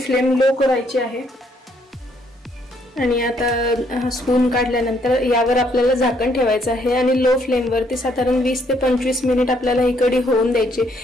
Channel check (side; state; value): both; normal; correlation 0.69